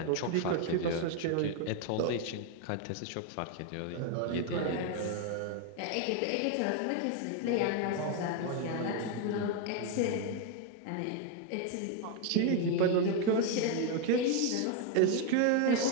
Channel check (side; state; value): both; different; correlation 0.01